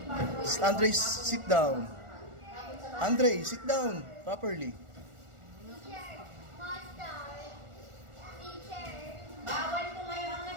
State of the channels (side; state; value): left; late; 1.4 ms